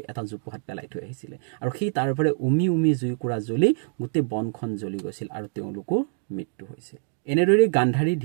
এটা জোপোহাত পেলাই থৈ আহিছিলে, আৰু সেই তাৰ পৰা উমি উমি জুইকুৰা জ্বলি গোটেই বনখন জ্বলি গৈছিল আৰু তেওঁলোকৰ মৃত্যু হৈছিল। এনেদৰে গান্ধাৰী,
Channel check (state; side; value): silent; left; digital silence